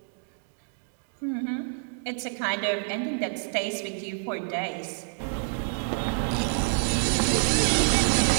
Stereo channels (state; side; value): silent; left; digital silence